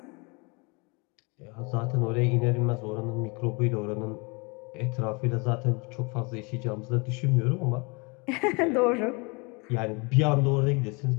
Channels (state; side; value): quieter; right; 29.9 dB